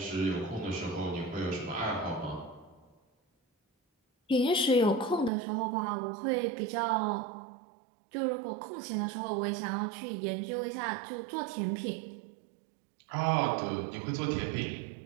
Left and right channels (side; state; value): left; drops out; at 5.3 s